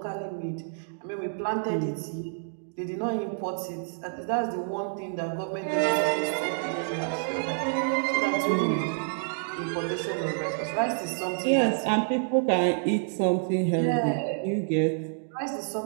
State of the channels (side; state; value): left; silent; digital silence